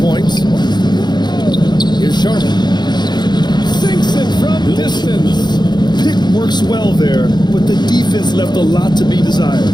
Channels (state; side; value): late; right; 0.21 ms